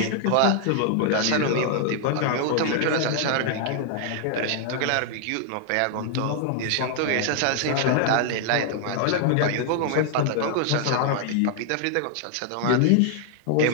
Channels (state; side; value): different; both; correlation 0.00